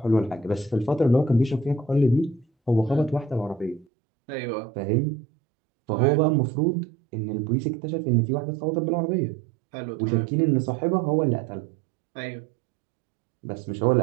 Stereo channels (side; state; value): left; drops out; at 3.9 s